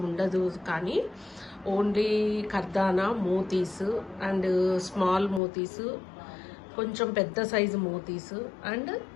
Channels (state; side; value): drops out; right; at 5.4 s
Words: ఉండదు, కానీ ఓన్లీ కర్దానా, మోతీస్ అండ్ స్మాల్ మోతీస్, కొంచెం పెద్ద సైజు మోతీస్ అండ్